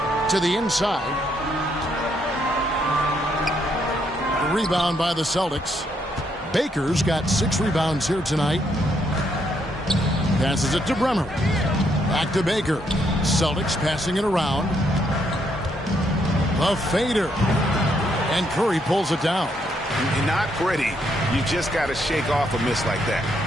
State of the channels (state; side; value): normal; both; correlation 0.74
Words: to the inside. Rebound by the Celtics. Baker's got 6 rebounds here tonight. Passes it to Bremer. Back to Baker. Celtics passing it around. The fader. And Curry pulls it down. Not pretty. You just got to shake off a miss like that.